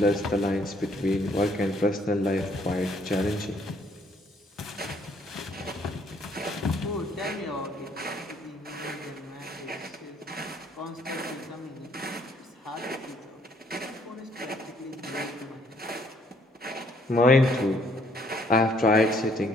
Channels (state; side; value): normal; both; correlation 0.65